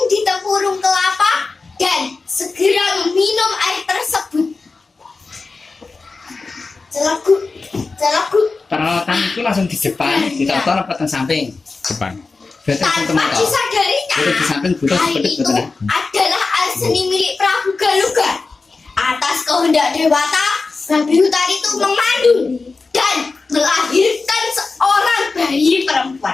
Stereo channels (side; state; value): right; quieter; 4.0 dB